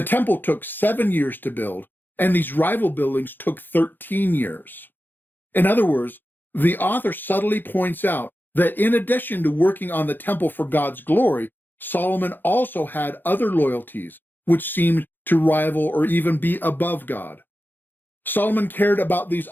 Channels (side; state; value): right; late; 0.092 ms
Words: temple took 7 years to build, and these rival buildings took 13 years. In other words, the author subtly points out that in addition to working on the temple for God's glory, Solomon also had other loyalties which seemed to rival or even be above God. Solomon cared about these